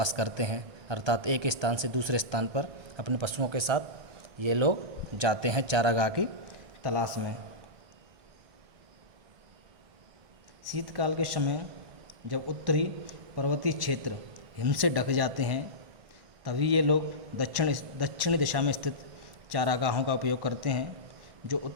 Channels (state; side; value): late; left; 1.6 ms